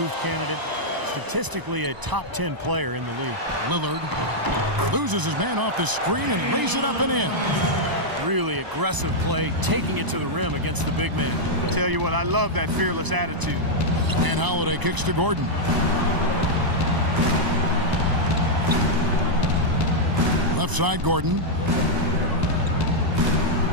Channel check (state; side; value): late; left; 1.0 ms